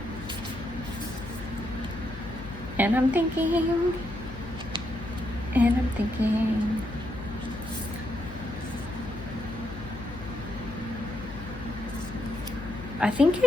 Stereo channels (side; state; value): left; noise; hum, 13 dB below the sound